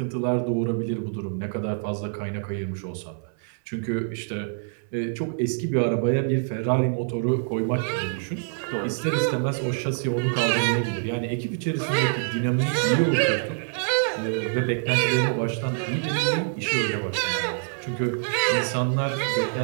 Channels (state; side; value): silent; left; 61 dB below the other